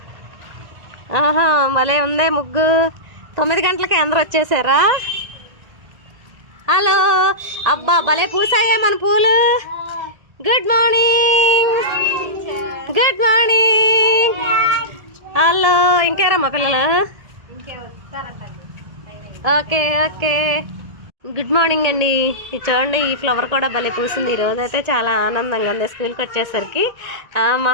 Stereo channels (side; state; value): left; late; 1.8 ms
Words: ఆహా, భలే ఉందే ముగ్గు. 9 గంటలకి అందరూ వచ్చేసారా? హలో, అబ్బా భలే పూసాయే మన పూలు. Good morning, good morning. Hello, ఇంకేరమ్మా పిల్లలు? ఓకే ఓకే, గుడ్ మార్నింగ్ అండి. ఇది చూడండి, ఈ ఫ్లవర్ కూడా భలే పూసింది. ఈరోజు అయితే చాలా ఆనందంగా ఉంది. స్కూల్కి వచ్చేసరికి మా